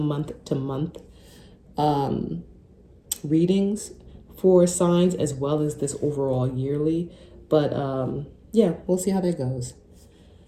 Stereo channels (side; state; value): both; identical; correlation 1.00